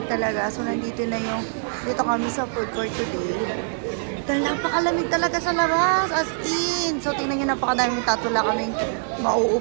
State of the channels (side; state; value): left; silent; 63 dB below the other